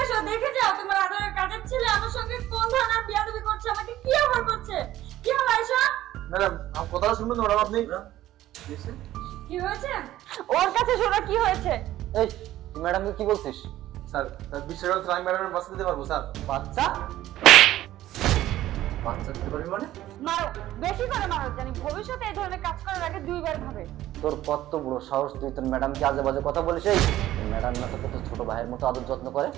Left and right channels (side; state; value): left; quieter; 14.2 dB